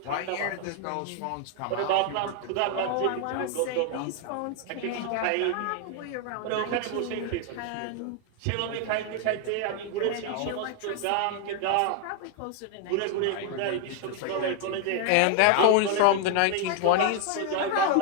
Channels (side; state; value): both; different; correlation 0.00